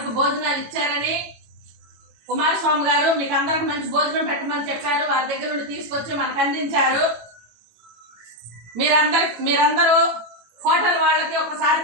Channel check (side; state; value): left; late; 18 ms